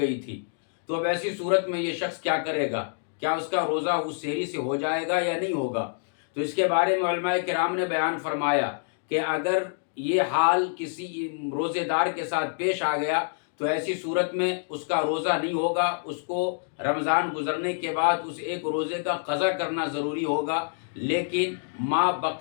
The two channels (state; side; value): silent; right; digital silence